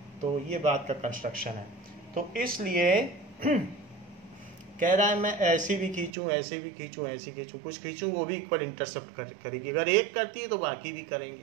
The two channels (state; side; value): drops out; left; at 6.1 s